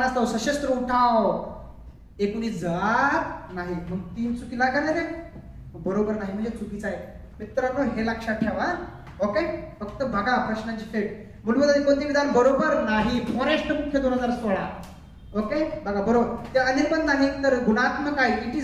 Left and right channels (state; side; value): identical; both; correlation 1.00